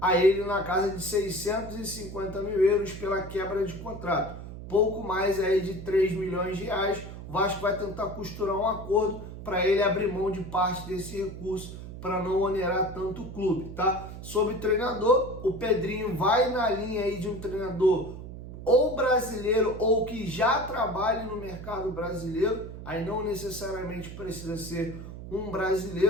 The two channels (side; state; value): right; noise; hum, 11 dB below the sound